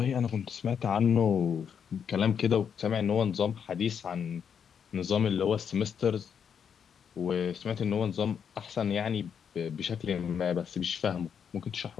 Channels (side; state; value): right; quieter; 7.5 dB